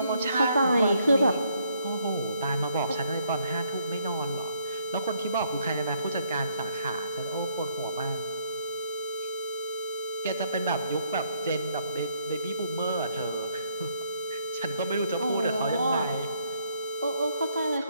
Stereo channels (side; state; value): both; inverted; correlation -0.70